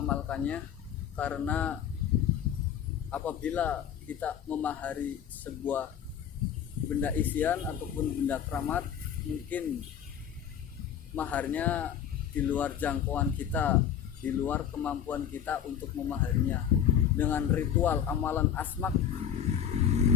karena apabila kita memahari sebuah benda isian ataupun benda keramat, mungkin maharnya di luar jangkauan kita, di luar kemampuan kita untuk memahaminya. Dengan ritual amalan asmak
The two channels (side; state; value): right; quieter; 9.1 dB